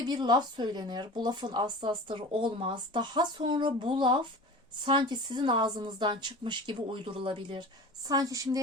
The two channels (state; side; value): normal; both; correlation 0.36